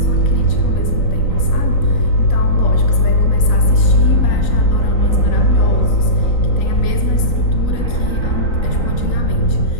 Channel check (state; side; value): late; right; 3.9 ms